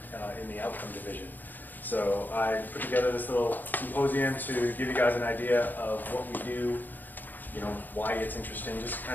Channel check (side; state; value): right; late; 0.087 ms